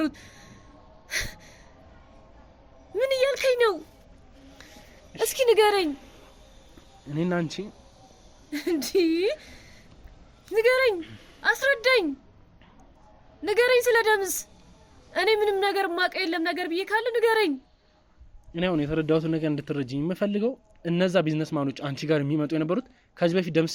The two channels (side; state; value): both; identical; correlation 1.00